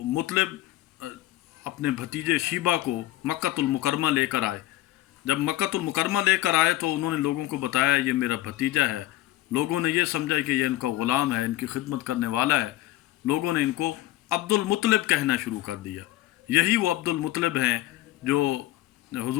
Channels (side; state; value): right; quieter; 16.1 dB